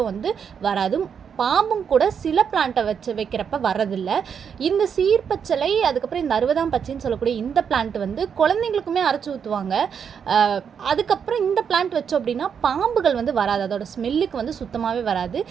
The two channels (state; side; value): quieter; left; 7.2 dB